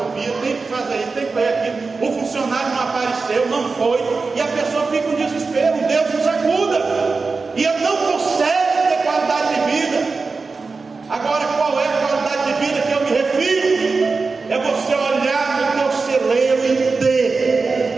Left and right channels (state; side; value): quieter; left; 4.2 dB